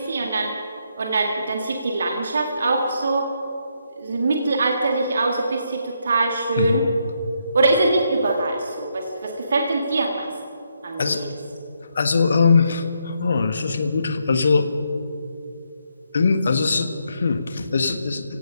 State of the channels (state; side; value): inverted; both; correlation -0.77